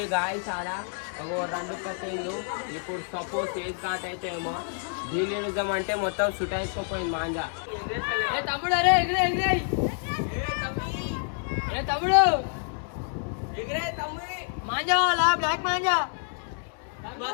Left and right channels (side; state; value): right; silent; 59 dB below the other